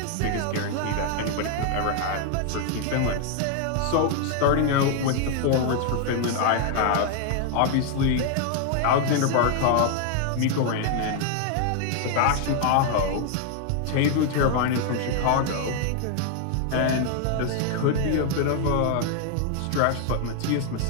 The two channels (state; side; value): different; both; correlation 0.00